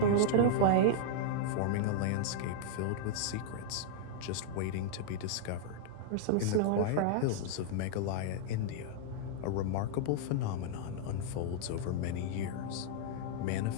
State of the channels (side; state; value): both; different; correlation -0.01